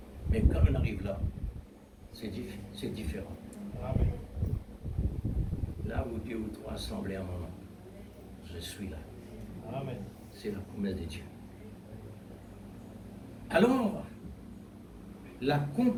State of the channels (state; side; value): identical; both; correlation 1.00